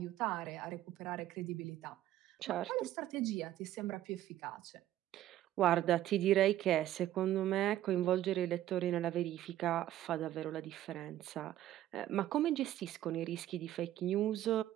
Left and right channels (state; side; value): quieter; left; 13.3 dB